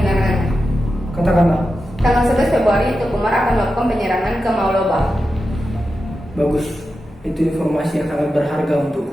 Katakanlah. Tanggal 11 Februari, Teguh Umar akan melakukan penyerangan ke Maulaba. Bagus. Itu informasi yang sangat berharga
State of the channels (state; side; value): normal; both; correlation 0.91